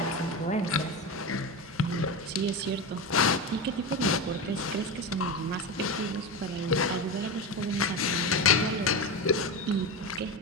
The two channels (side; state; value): both; normal; correlation 0.19